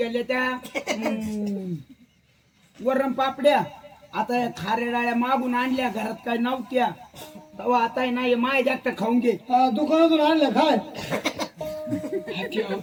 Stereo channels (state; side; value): identical; both; correlation 1.00